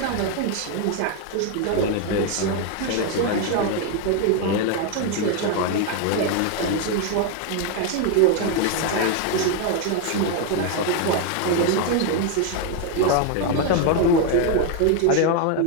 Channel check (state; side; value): different; both; correlation 0.01